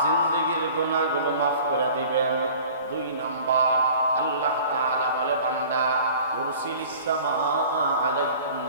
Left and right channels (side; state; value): both; inverted; correlation -0.46